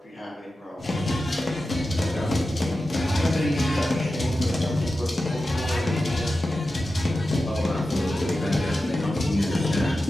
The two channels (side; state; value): both; normal; correlation 0.92